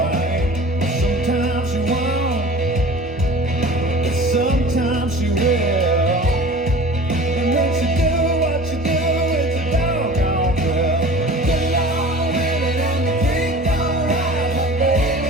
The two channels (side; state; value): both; normal; correlation 0.41